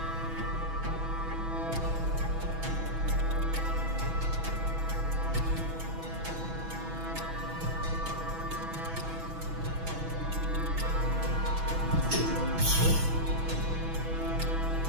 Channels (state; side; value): late; left; 6.1 ms